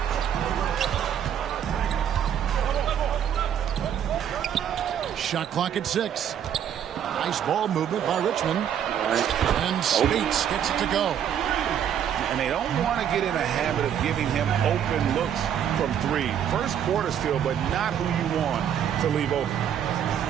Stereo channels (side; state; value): left; quieter; 9.2 dB